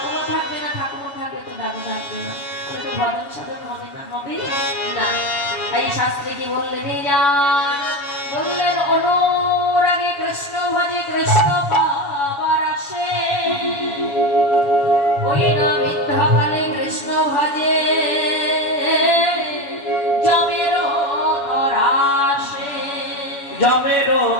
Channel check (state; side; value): late; right; 7.1 ms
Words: থাকবে না, ঠাকুমা থাকবে তো দাদু থাকবে না, তাহলে তো ভজন সাধন হবে না, হবে না। তাই শাস্ত্রে কি বললেন, বললেন অনুরাগে কৃষ্ণ ভজে কৃষ্ণ পাবার আসে, ওই না বৃদ্ধাকালে কৃষ্ণ ভজে জমেরও তরাসে, জমেরও